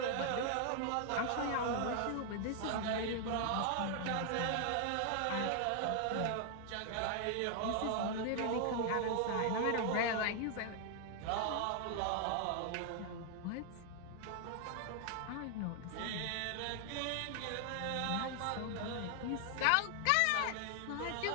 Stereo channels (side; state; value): both; different; correlation 0.00